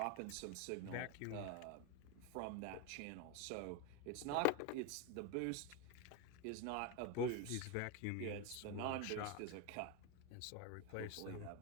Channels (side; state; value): both; different; correlation 0.02